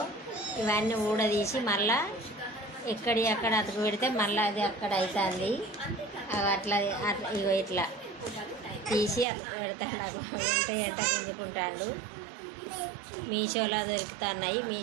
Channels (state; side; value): drops out; left; at 9.2 s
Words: ఇవన్నీ ఊడదీసి మళ్ళా ఎక్కడి అక్కడ అతకు పెడితే మళ్ళీ అది అక్కడ అవుతుంది. అట్లా ఇగో ఇట్లా తీసి అతకు పెడతాడు. నాకు ఎంట గుంజుకుంటాడు. మీషోలో దొరుకుతున్నాయి.